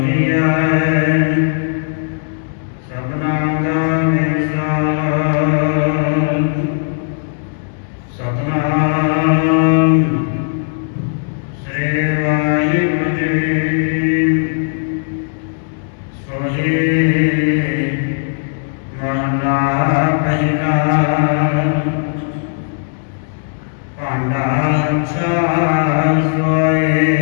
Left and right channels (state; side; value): silent; right; digital silence